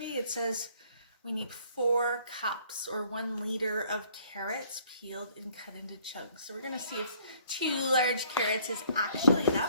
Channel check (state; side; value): inverted; both; correlation -0.59